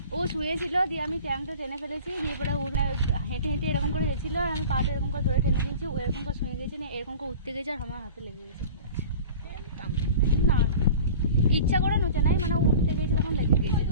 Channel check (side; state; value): both; inverted; correlation -0.39